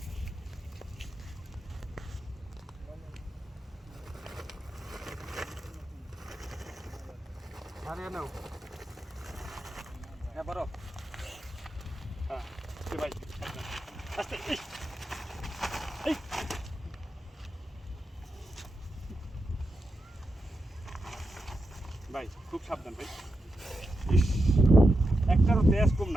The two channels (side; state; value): both; normal; correlation 0.87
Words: হারিয়ে নাও হ্যাঁ বড় হ্যাঁ ভাই, আস্তে, এই ভাই খুব সাবধান ভাই। ইস, একটারও তেজ কম